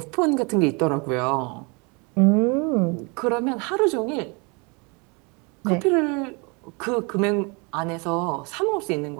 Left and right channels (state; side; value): quieter; left; 31.0 dB